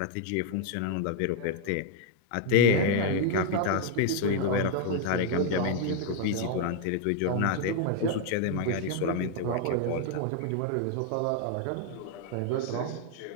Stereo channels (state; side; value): different; both; correlation 0.00